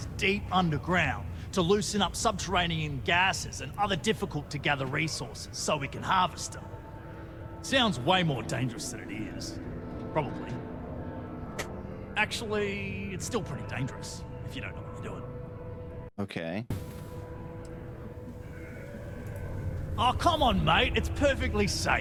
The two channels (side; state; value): both; identical; correlation 1.00